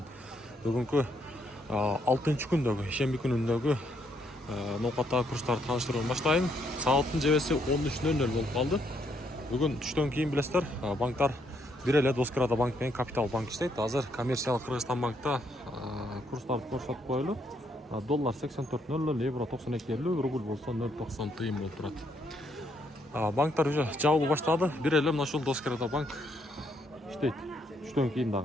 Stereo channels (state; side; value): normal; both; correlation 0.73